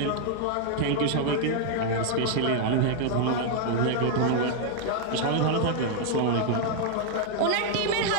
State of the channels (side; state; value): both; different; correlation 0.00